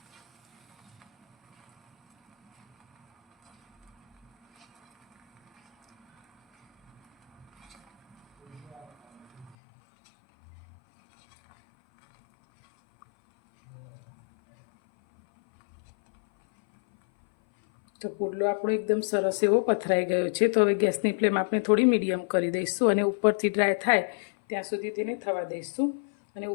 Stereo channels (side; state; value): right; drops out; at 9.6 s